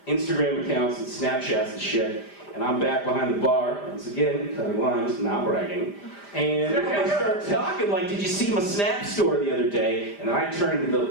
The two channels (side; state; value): right; late; 5.0 ms